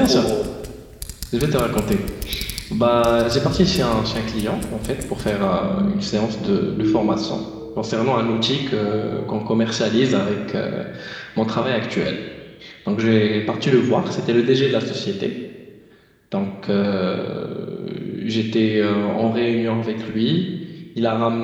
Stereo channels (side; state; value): both; identical; correlation 1.00